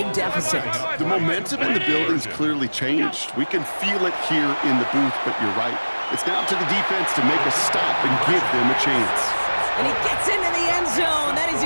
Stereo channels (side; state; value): both; inverted; correlation -1.00